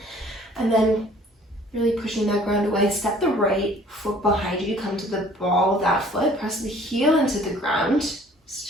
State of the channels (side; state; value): both; normal; correlation 0.54